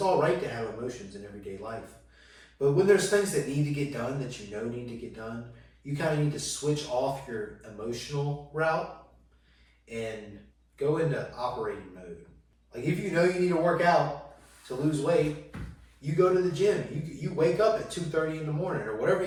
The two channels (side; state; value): both; identical; correlation 1.00